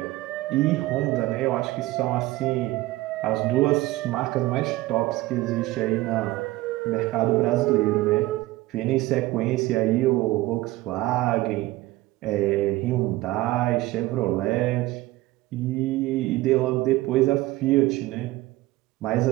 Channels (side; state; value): left; quieter; 18.2 dB